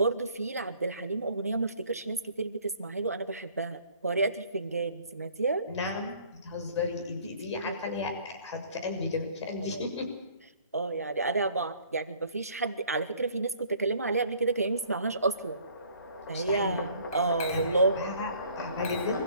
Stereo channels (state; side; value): inverted; both; correlation -0.56